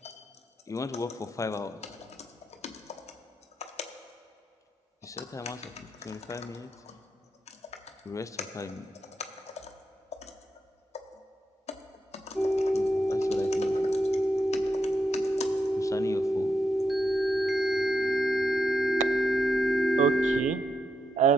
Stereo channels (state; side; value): normal; both; correlation 0.83